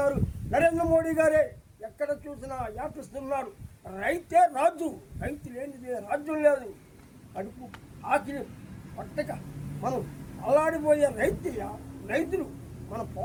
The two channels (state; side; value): identical; both; correlation 1.00